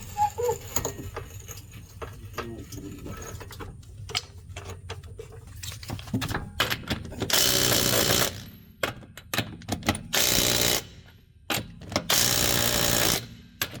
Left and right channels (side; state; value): both; identical; correlation 1.00